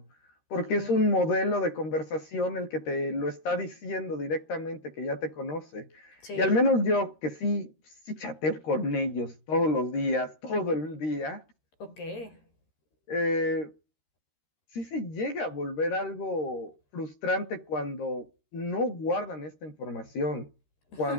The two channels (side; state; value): right; late; 13 ms